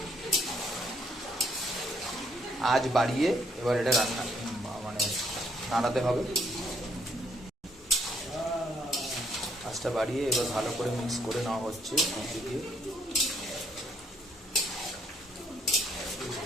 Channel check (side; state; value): both; normal; correlation 0.69